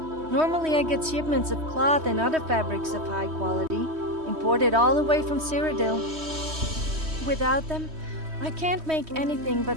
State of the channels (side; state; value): left; late; 3.2 ms